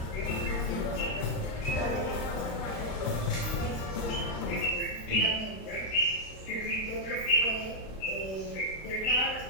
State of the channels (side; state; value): right; late; 34 ms